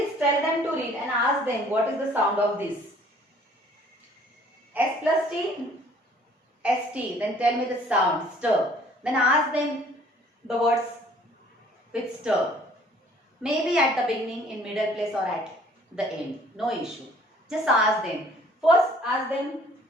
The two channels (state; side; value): normal; both; correlation 0.56